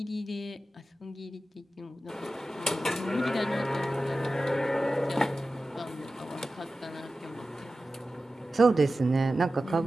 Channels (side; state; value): both; normal; correlation 0.94